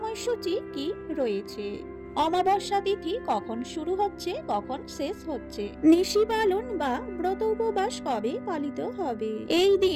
কি রয়েছে, অমাবস্যা তিথি কখন শুরু হচ্ছে কখন শেষ হচ্ছে, নিশি পালন বা ব্রত উপবাস কবে পালিত হবে, এই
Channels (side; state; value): both; identical; correlation 1.00